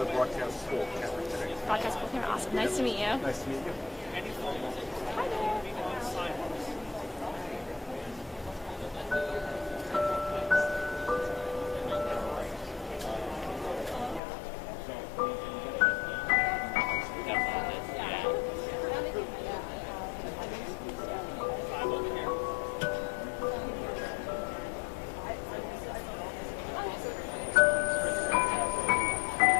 broadcast school camera today. Broadcast school camera. Awesome. Nice to meet you. Nice to meet you. Hi there.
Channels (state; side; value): drops out; right; at 14.2 s